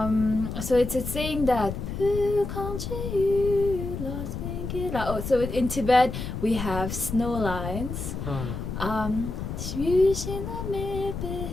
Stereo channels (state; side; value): noise; left; rumble, 6 dB below the sound